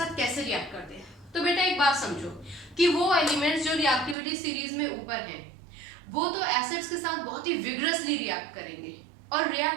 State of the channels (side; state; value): left; drops out; at 4.2 s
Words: कैसे रिएक्ट करते हैं। तो बेटा एक बात समझो कि वो एलिमेंट्स जो रिएक्टिविटी सीरीज में ऊपर हैं वो तो एसिड्स के साथ बहुत ही विगरसली रिएक्ट करेंगे और